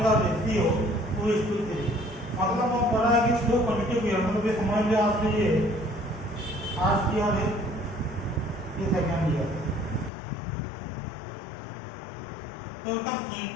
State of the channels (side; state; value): right; drops out; at 10.1 s